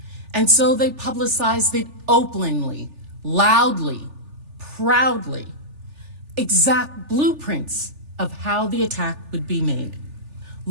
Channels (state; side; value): late; left; 3.4 ms